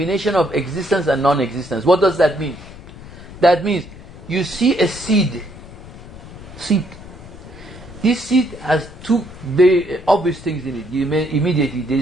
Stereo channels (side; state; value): left; noise; rumble, 16 dB below the sound